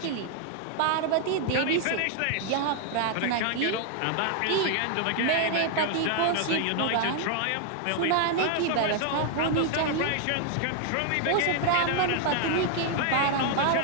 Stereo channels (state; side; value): different; both; correlation 0.00